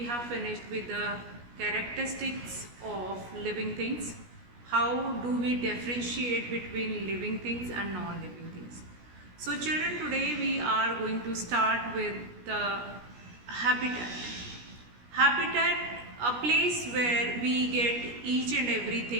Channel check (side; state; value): left; late; 17 ms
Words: have finished with the characteristics of living things. How do we differentiate between living things and non-living things? So children, today we are going to start with the habitat. Habitat, a place where we get each and